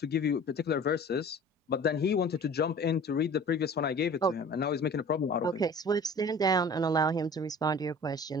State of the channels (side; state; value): both; normal; correlation 0.43